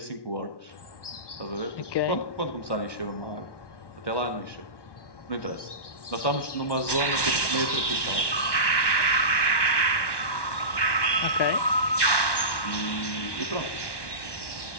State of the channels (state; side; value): late; right; 1.1 ms